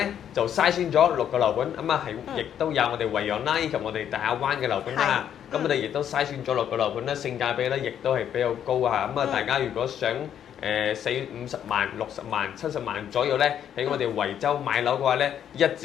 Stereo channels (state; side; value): quieter; right; 9.5 dB